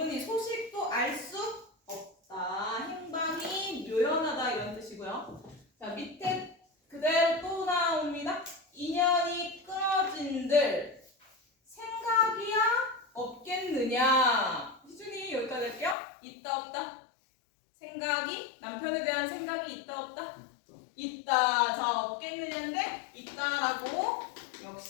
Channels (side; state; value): right; drops out; at 16.0 s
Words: 소식도 알 수 없다. 행방이 묘연하다 이런 뜻이고요. 자 밑에 그대로 또 나옵니다. 인연이 끊어진들 생각이야 없겠느냐. 희준이 여기까지 할게요. 있다 없다? 생각이 남편에 대한 생각이 있다 없다? 있다. 자 없겠느냐인데 있다라고